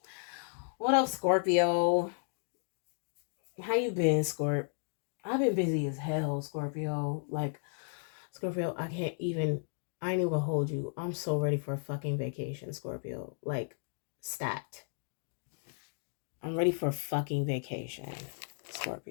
What up, Scorpio? How you been, Scorp? I've been busy as hell, Scorpio. Like, Scorpio, I ain't even gonna hold you. I'm so ready for a fucking vacation, Scorpio. Like, stat. I'm ready for a fucking vacation,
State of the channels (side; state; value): right; silent; digital silence